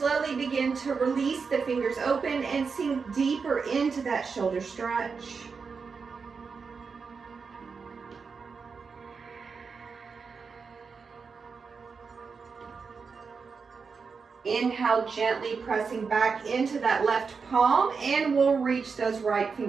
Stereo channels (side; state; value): left; quieter; 5.2 dB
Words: begin to release the fingers open and sink deeper into that shoulder stretch. Inhale, gently pressing back into that left palm, and we'll reach those right